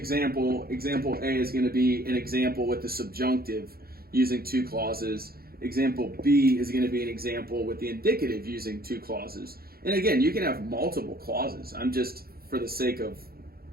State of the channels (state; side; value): late; left; 0.44 ms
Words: A is gonna be an example with the subjunctive using two clauses. Example B is going to be an example with the indicative using two clauses. And again, you can have multiple clauses. I'm just, for the sake of